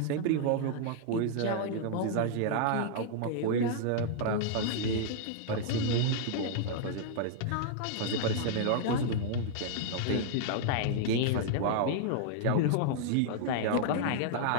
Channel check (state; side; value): different; both; correlation -0.01